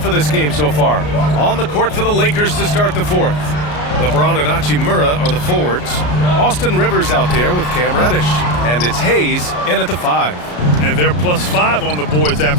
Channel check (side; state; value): right; late; 33 ms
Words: for this game so far. On the court for the Lakers to start the fourth. LeBron and Hachimura are the forwards. Austin Rivers out there with Cam Reddish. And it's Hayes in at the 5. And they're +5 on the boards